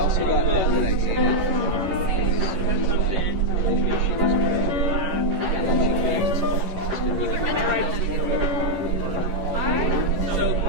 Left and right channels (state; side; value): late; left; 11 ms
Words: got that I dated. Told me she was great. And then she came. So